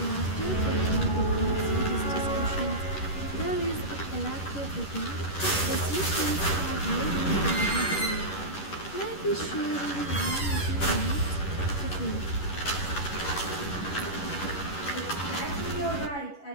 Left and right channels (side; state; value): right; late; 11 ms